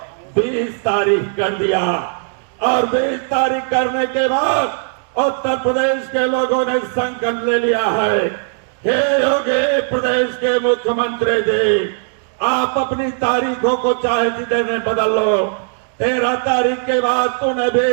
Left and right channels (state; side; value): silent; left; digital silence